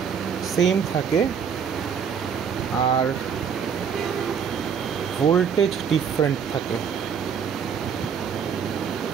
সেম থাকে আর ভোল্টেজ ডিফারেন্ট থাকে।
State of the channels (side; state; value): left; quieter; 7.1 dB